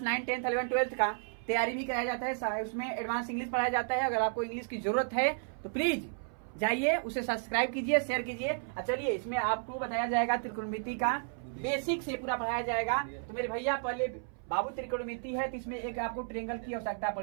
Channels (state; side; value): silent; left; 56 dB below the other